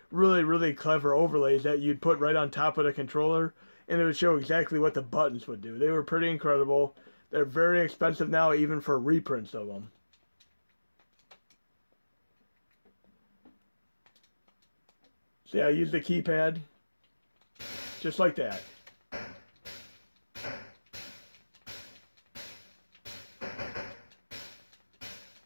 really, really clever overlays that you'd put right on top of the controller, and it would show exactly what the buttons would do. They were pretty incredible. They're very expensive now, even for reprints of them. So yeah, I use the keypad just like that.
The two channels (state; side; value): inverted; both; correlation -1.00